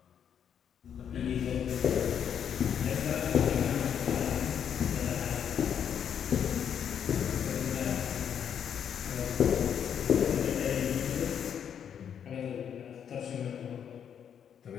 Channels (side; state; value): right; quieter; 8.4 dB